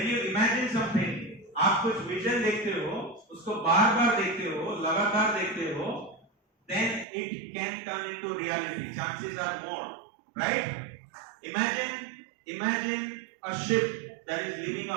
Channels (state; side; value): drops out; left; at 7.1 s